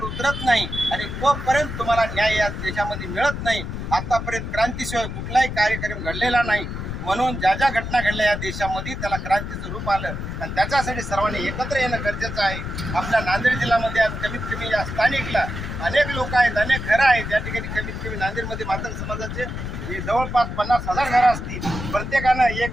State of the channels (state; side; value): noise; left; rumble, 6 dB below the sound